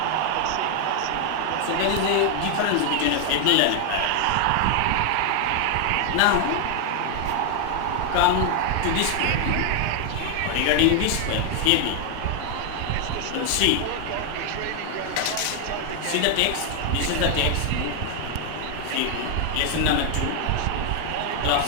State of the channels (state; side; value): different; both; correlation 0.00